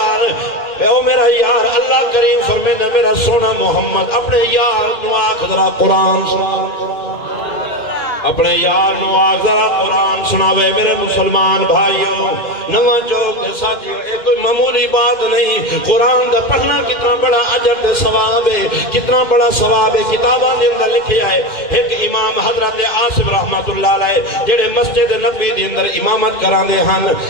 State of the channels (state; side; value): late; right; 2.1 ms